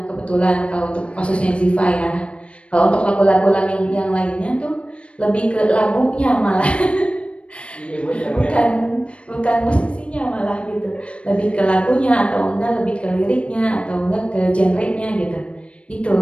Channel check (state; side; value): late; right; 0.060 ms